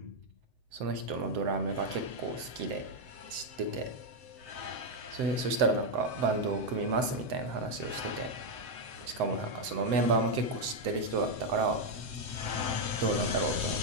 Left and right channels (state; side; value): late; left; 7.8 ms